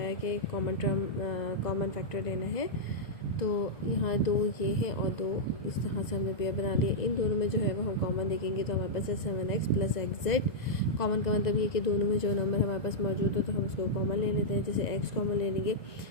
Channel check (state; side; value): late; right; 1.9 ms